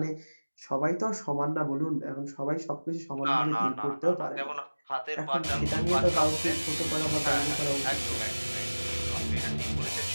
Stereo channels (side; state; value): both; inverted; correlation -1.00